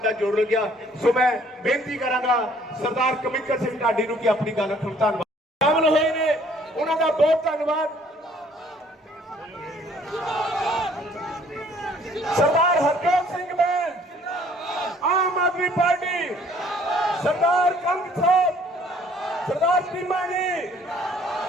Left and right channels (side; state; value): both; normal; correlation 0.59